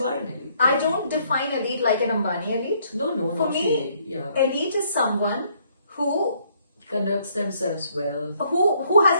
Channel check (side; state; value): both; inverted; correlation -0.67